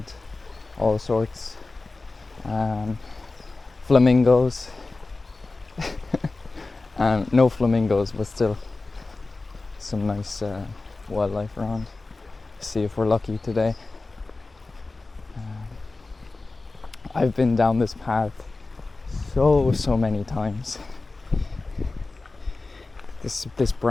all sorts. Flamingos. No flamingos, but still some nice wildlife around. See if we're lucky today. I've been down this path so many times. This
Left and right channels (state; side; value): quieter; right; 3.4 dB